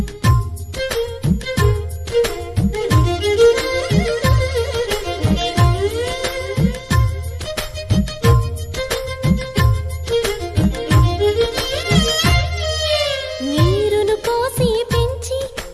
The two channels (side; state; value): both; identical; correlation 1.00